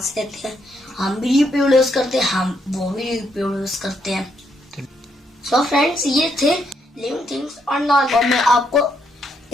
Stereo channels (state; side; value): normal; both; correlation 0.75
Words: लेते हैं, हम भी रिप्रोड्यूस करते हैं, वो भी रिप्रोड्यूस करते हैं। सो फ्रेंड्स, ये थे लिविंग थिंग्स और नॉन। और मैं आपको